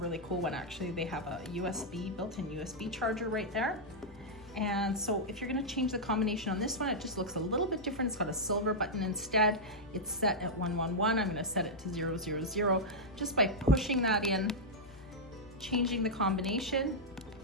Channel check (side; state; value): both; normal; correlation -0.06